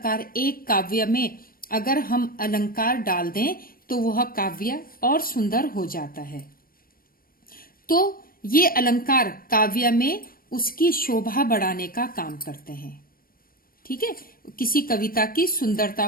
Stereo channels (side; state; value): right; late; 0.42 ms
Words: एक काव्य में अगर हम अलंकार डाल दें तो वह काव्य और सुंदर हो जाता है। तो ये अलंकार काव्य में उसकी शोभा बढ़ाने का काम करते हैं। ठीक है, किसी कविता की सुंदरता